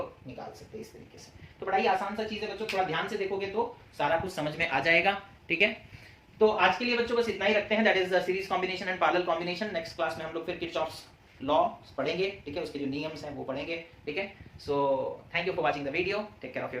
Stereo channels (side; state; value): both; identical; correlation 1.00